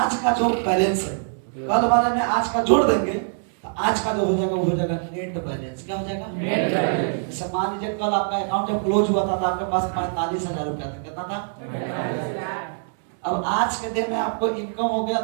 का जो बैलेंस है, कल वाले में आज का जोड़ देंगे तो आज का जो हो जाएगा वो हो जाएगा नेट बैलेंस। क्या हो जाएगा? Net balance. मान लीजिए कल आपका अकाउंट जब क्लोज हुआ था तो आपके पास 45,000 रुपया था। कितना था? अब आज के दिन में आपको इनकम हो गया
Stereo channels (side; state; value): left; silent; digital silence